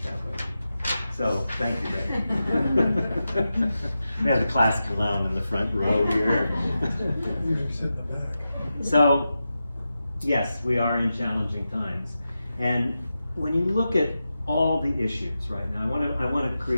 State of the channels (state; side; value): inverted; both; correlation -0.91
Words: that way. So thank you, Ray. We have the class clown in the front row here. Usually sit in the back. So yes, we are in challenging times, and when you look at all the issues right now, I want to